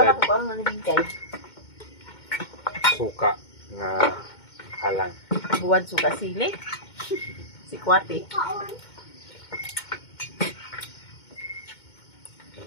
Bulad. ko pa ang nalibintay. Suka nga halang. Buwan suka sili. Si Kwate.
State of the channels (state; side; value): late; right; 2.2 ms